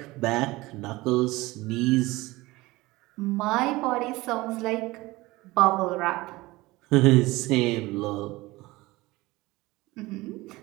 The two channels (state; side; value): quieter; left; 20.5 dB